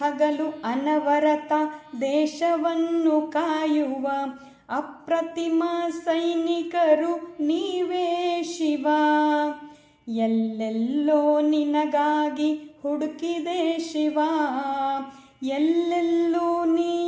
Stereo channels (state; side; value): identical; both; correlation 1.00